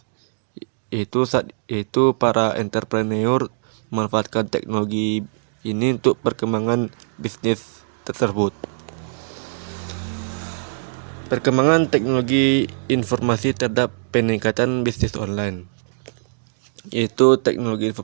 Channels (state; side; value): silent; left; digital silence